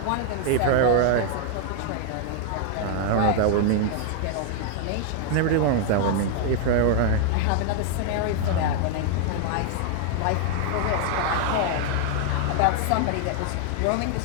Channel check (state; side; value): different; both; correlation 0.00